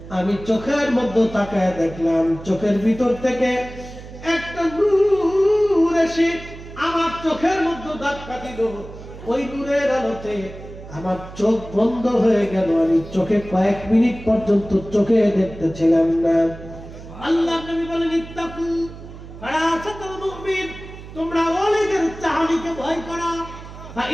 আমি চোখের মধ্যে তাকায় দেখলাম, চোখের ভিতর থেকে একটা নূর এসে আমার চোখের মধ্যে ধাক্কা দিল। ওই নূরের আলোতে আমার চোখ বন্ধ হয়ে গেল। আমি চোখে কয়েক মিনিট পর্যন্ত চোখে দেখতেছিলাম না। আল্লাহ নবী বলেন ইত্তাকু ফারাসাতুল মুমিন, তোমরা ওলিদের চাহনিকে ভয় করো।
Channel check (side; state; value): right; noise; hum, 15 dB below the sound